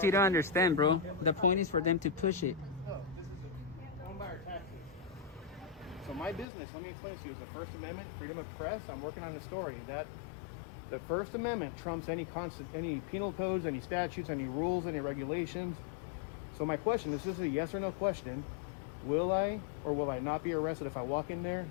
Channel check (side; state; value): right; drops out; at 6.5 s